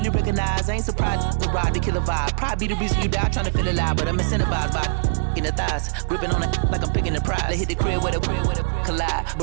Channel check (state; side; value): silent; left; digital silence